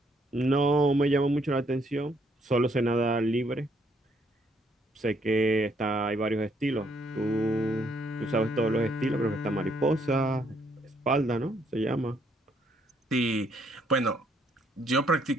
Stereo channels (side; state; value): both; normal; correlation 0.70